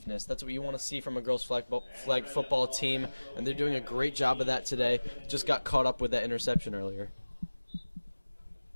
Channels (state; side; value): inverted; both; correlation -1.00